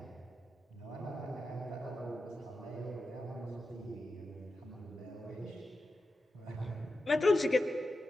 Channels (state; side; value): normal; both; correlation 0.90